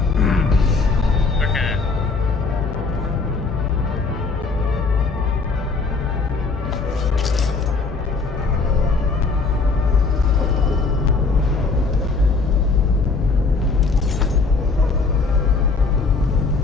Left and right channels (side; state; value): right; quieter; 4.2 dB